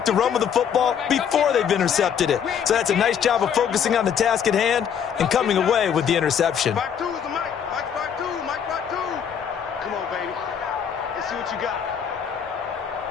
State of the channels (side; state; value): right; quieter; 8.0 dB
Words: to run with the football before they've intercepted it. So that's a nice job of focusing on the task at hand and coming away with the interception. Back two is the Mike. Mike 5-2. Mike 5-2. Come on, baby. Let's see what you got.